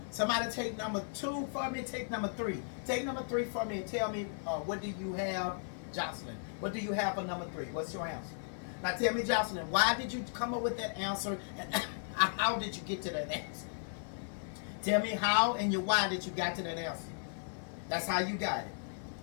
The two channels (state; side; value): silent; right; 54 dB below the other